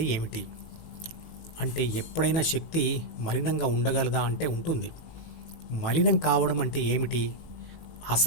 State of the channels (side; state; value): right; late; 18 ms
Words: ఏమిటి? అంటే ఎప్పుడైనా శక్తి మలినంగా ఉండగలదా అంటే ఉంటుంది. మలినం కావడం అంటే ఏమిటి?